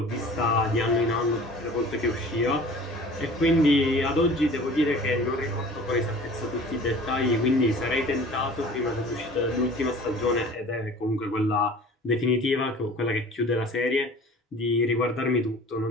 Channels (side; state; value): both; normal; correlation 0.44